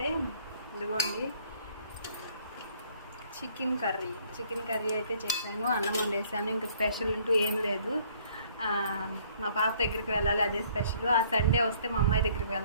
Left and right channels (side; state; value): both; inverted; correlation -0.60